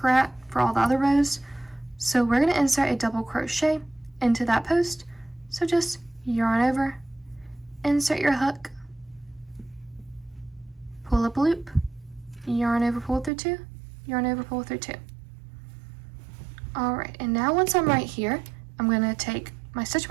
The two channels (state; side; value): drops out; left; at 13.3 s